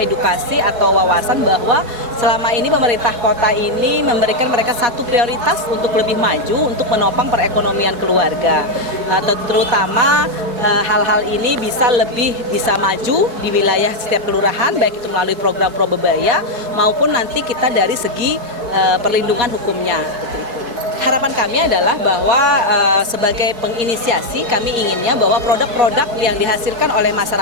atau wawasan bahwa selama ini pemerintah kota ini memberikan mereka satu prioritas untuk lebih maju untuk menopang perekonomian keluarga. Terutama hal-hal ini bisa maju di wilayah setiap kelurahan, baik itu melalui program Probebaya maupun nanti kita dari segi perlindungan hukumnya. Harapan kami adalah bahwa sebagai penginisiasi kami inginnya bahwa produk-produk yang dihasilkan oleh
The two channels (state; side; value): late; left; 4.2 ms